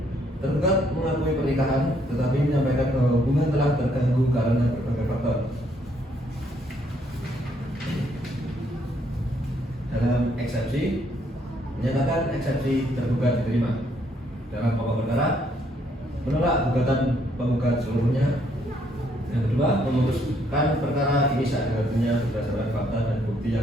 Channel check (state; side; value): normal; both; correlation 0.70